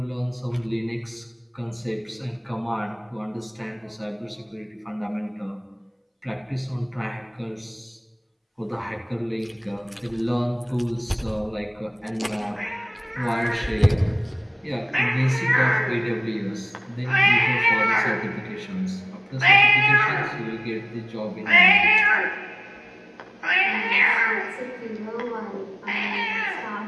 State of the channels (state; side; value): identical; both; correlation 1.00